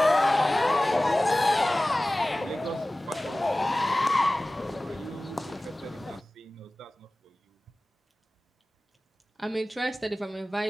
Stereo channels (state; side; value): normal; both; correlation 0.97